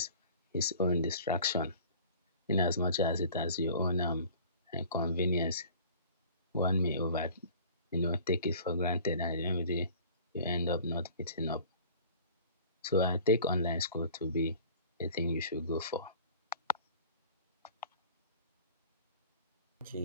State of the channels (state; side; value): inverted; both; correlation -0.46